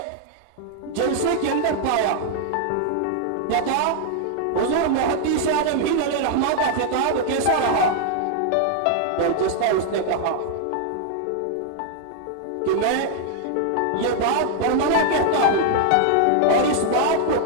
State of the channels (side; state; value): both; different; correlation 0.00